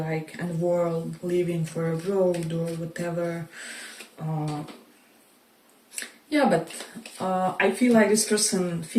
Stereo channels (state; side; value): identical; both; correlation 1.00